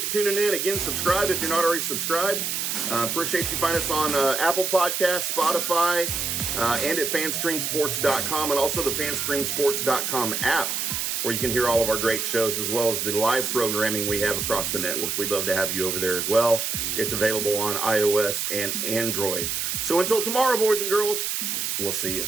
you tuning in. Again, subscribe if you're not already subscribed. Appreciate you find us on Apple Podcasts, Spotify, and at fanstreamsports.com, and also the fanstreamsports.com app, where you can hear all of our great shows as well as the live programming we have across the network. We'd love to have you over there as well. It's available on iOS and Android. So until tomorrow, boys and girls, we'll see you.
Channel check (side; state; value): right; noise; hiss, 1 dB below the sound